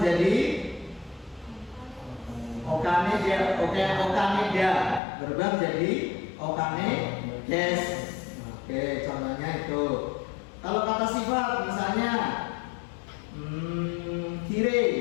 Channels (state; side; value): drops out; right; at 5.0 s